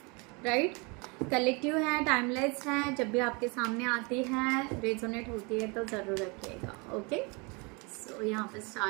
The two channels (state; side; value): quieter; left; 29.9 dB